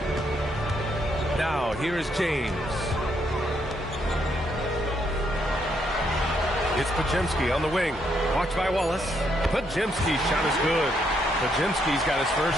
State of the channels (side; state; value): both; normal; correlation 0.75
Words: Now, here is James. It's Podziemski on the wing. Watched by Wallace. Podziemski's shot is good. Podziemski's got his